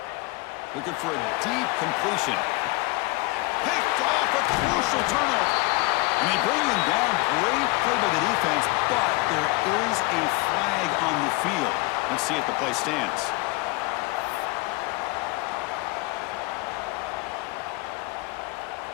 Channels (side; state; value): right; quieter; 23.6 dB